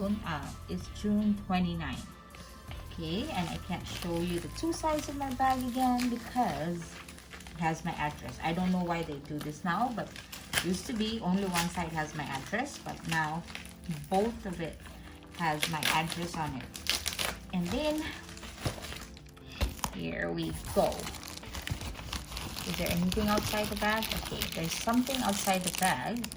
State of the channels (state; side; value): identical; both; correlation 1.00